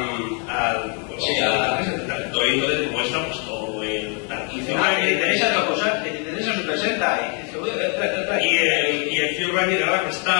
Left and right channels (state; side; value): quieter; right; 37.1 dB